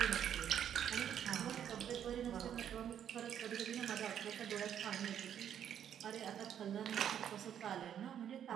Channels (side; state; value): left; quieter; 9.4 dB